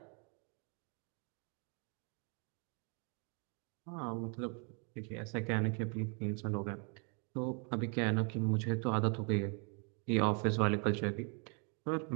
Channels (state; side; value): quieter; left; 37.1 dB